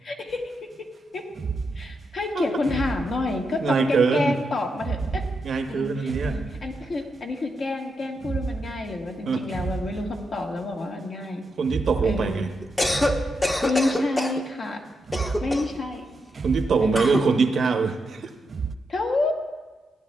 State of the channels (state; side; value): normal; both; correlation 0.84